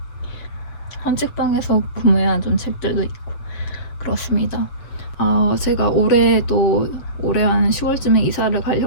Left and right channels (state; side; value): late; right; 7.4 ms